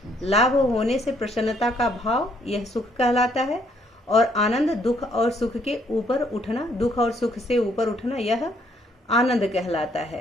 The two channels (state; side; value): normal; both; correlation 0.67